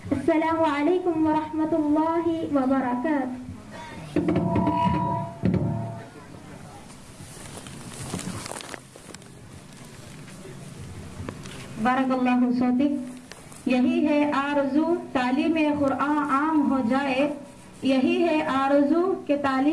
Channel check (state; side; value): identical; both; correlation 1.00